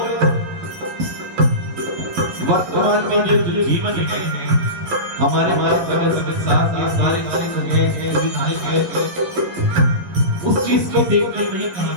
वर्तमान में जो जीवन है, हमारे सारे उस चीज को देखकर नहीं कहा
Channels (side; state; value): left; late; 11 ms